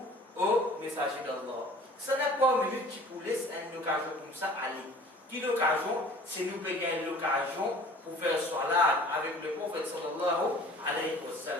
au messager d'Allah. Ça n'a pas une minute qui vous laisse une occasion comme ça aller. Qui l'occasion? C'est nous qui gagnons l'occasion pour faire salat avec le prophète sallallahu alayhi wa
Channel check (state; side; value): normal; both; correlation 0.48